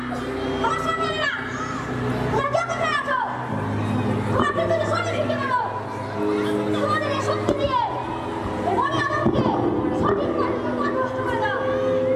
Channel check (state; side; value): identical; both; correlation 1.00